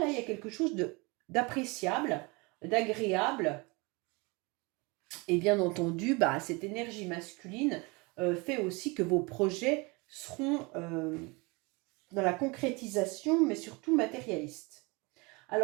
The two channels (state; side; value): quieter; left; 27.1 dB